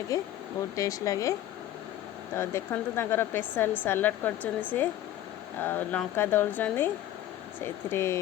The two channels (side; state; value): right; quieter; 12.8 dB